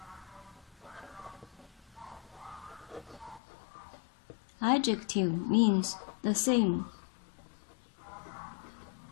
Adjective means the same.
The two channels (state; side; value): drops out; right; at 3.4 s